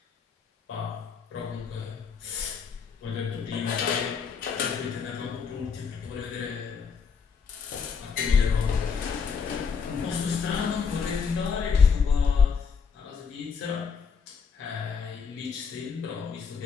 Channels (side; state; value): right; quieter; 5.9 dB